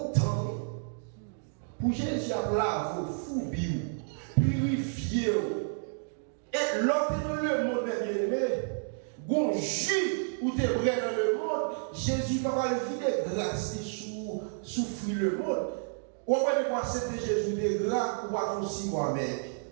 temps. Pour Jésus à laver, fouiller, purifier. Et l'autre dans le monde, bien aimé, bon jus ou t'es vrai dans le monde, Jésus va pas le vider grâce souffrir le monde. Ou pas de quoi c'était Jésus de grâce ou pas aussi moi-même.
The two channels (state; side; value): silent; left; digital silence